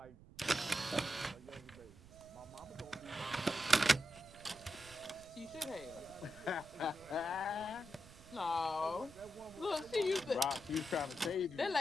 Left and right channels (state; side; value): noise; right; rumble, 20 dB below the sound